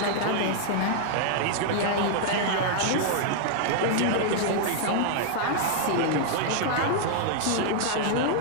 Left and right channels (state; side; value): different; both; correlation -0.01